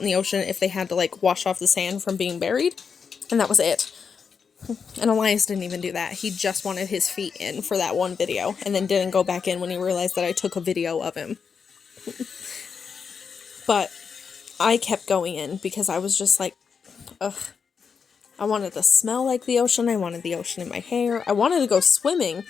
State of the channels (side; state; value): right; quieter; 6.1 dB